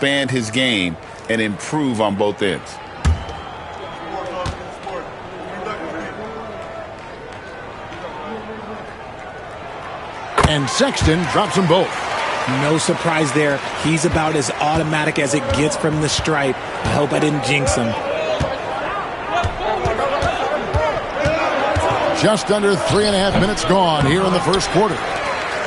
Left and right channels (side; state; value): both; identical; correlation 1.00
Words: his game and improve on both ends. And Sexton drops them both. No surprise there. He's about as automatic as it gets from the stripe. I hope I didn't jinx him. Just under 3.5 minutes gone here in the first quarter.